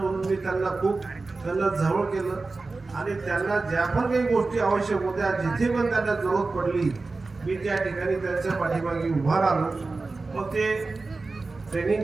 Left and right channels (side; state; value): left; quieter; 3.7 dB